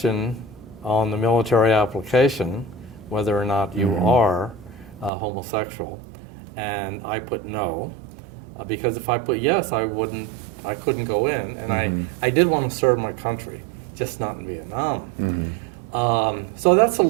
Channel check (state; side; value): drops out; left; at 5.1 s